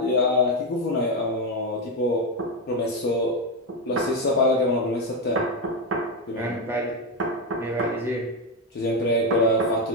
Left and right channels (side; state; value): both; normal; correlation 0.08